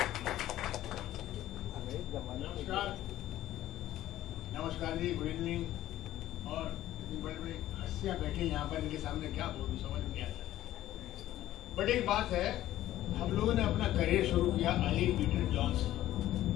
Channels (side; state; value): right; quieter; 13.9 dB